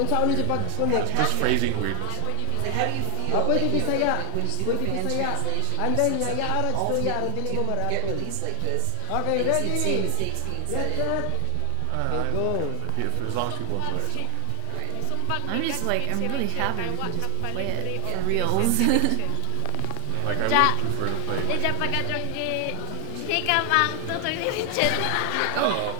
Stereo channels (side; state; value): both; different; correlation 0.00